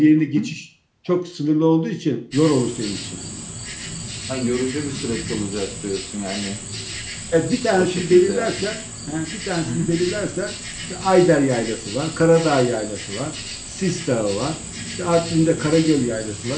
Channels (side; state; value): both; identical; correlation 1.00